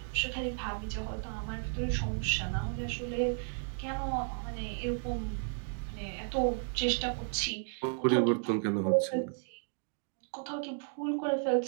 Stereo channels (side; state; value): left; silent; 55 dB below the other